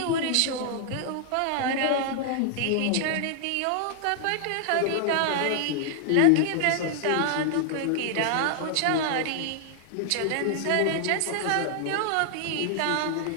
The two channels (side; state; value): both; different; correlation -0.01